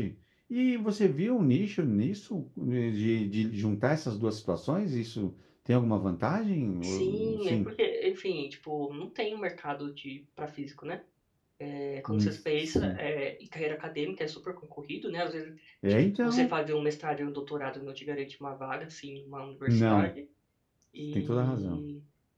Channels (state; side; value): identical; both; correlation 1.00